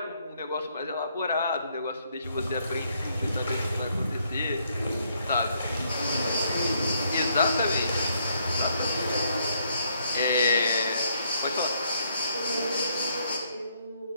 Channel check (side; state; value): both; inverted; correlation -0.71